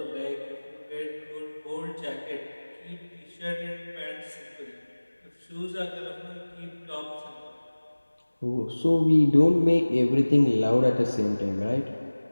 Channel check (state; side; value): inverted; both; correlation -1.00